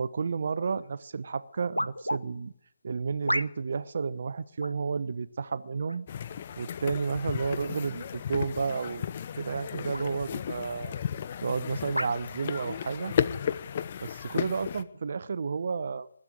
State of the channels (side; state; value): both; inverted; correlation -0.82